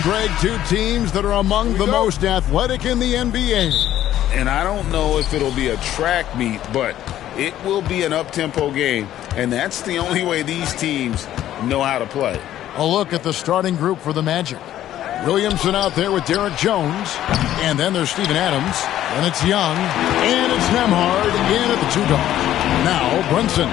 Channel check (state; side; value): quieter; right; 12.4 dB